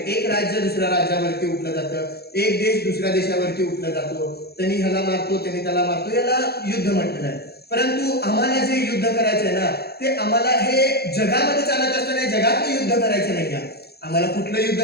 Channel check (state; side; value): late; right; 0.46 ms